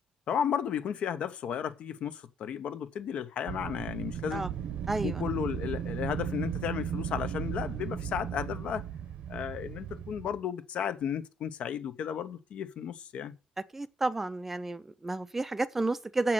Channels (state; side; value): normal; both; correlation 0.66